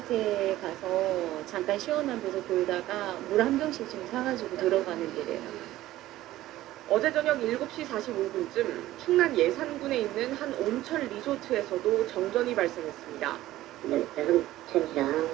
가서 잠깐 시원한 데서 돌다가 물 한 병씩 좀 사가지고 들어가는 길이에요. 어제 저녁 7시 45분쯤 충남 예산군에 있는 한 온천 리조트에서도 정전이 발생했습니다. 온천이랑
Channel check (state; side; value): quieter; left; 15.3 dB